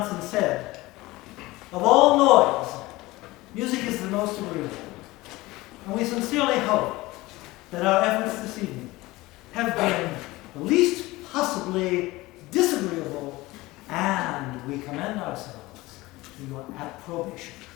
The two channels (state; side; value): quieter; right; 19.9 dB